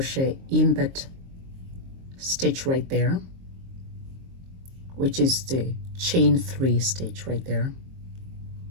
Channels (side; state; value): left; late; 22 ms